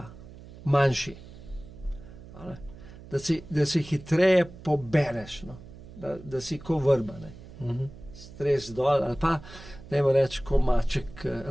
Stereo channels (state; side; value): noise; right; hum, 17 dB below the sound